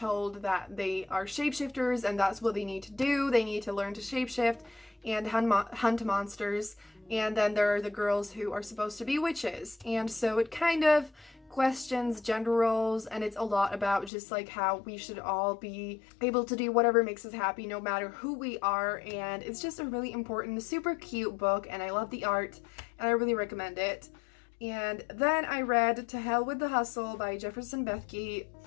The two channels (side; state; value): right; drops out; at 14.1 s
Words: that they are shapeshifters and that's what they need to do. They need to learn to shapeshift and hunt monsters. And then there are the girls who are supposed to be witches. And so it kind of questions gender roles, and it's a lot about just like how we should all be able to do whatever makes us happy no matter who we are. And it's just a really important, super cute book, and I love the art and I really recommend it. And then I read To Hell with the Hustle by Jefferson Bethke,